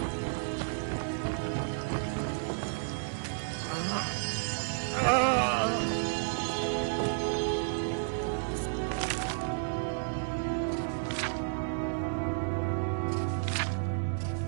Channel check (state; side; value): silent; left; digital silence